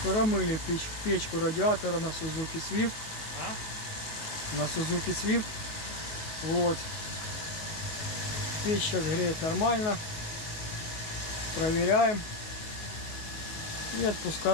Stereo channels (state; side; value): late; right; 19 ms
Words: Промыли печку радиатора на Suzuki Swift. На Suzuki Swift. Вот. Печь сейчас греет нормально. Проверяем. И